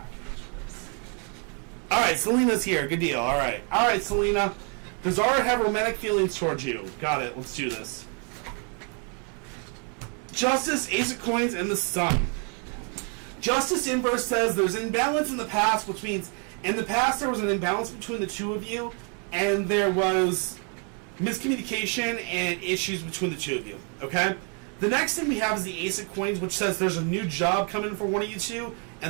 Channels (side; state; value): left; quieter; 38.4 dB